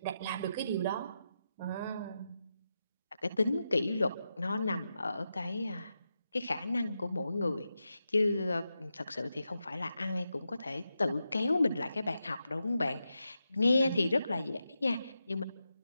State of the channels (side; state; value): both; inverted; correlation -0.88